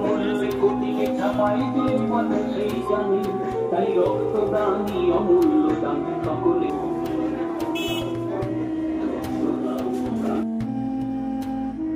তাই রক্তদানি অমূল্য দান সকলে।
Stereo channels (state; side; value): identical; both; correlation 1.00